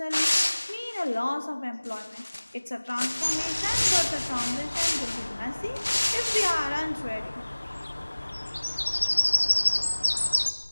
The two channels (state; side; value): inverted; both; correlation -1.00